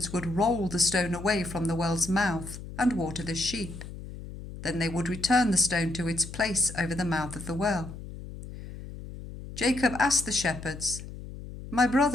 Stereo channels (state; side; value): noise; left; hum, 12 dB below the sound